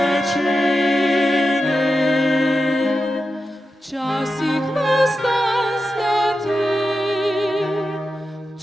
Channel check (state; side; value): normal; both; correlation 0.90